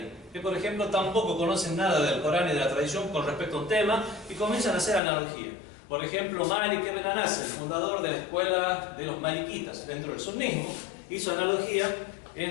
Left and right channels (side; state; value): right; drops out; at 5.0 s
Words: Que por ejemplo tampoco conocen nada del Corán y de la tradición con respecto a un tema y comienzan a hacer analogía. Por ejemplo, Malik ibn Anas, el fundador de la escuela de los malikitas dentro del sunnismo, hizo analogía